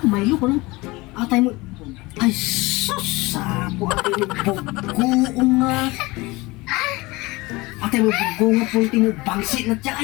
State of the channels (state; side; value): quieter; right; 22.5 dB